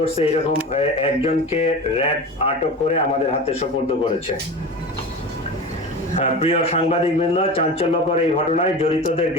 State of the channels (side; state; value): both; normal; correlation 0.30